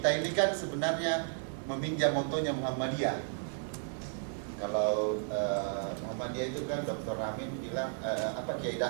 ini kan sebenarnya meminjam motonya Muhammadiyah. Kalau Muhammadiyah itu kan Dr. Amin bilang Kiai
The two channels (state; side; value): silent; left; 55 dB below the other